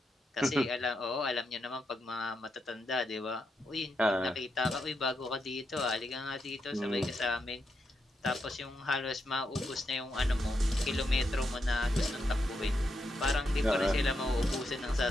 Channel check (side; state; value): both; normal; correlation 0.83